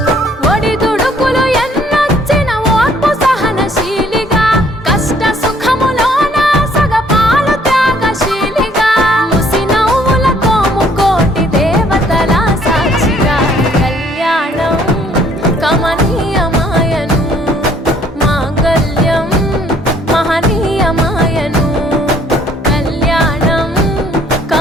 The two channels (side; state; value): both; normal; correlation 0.62